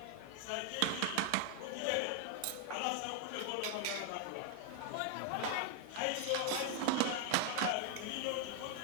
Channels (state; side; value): different; both; correlation 0.00